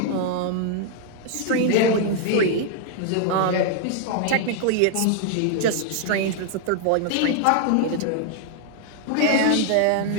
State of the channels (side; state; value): both; different; correlation 0.00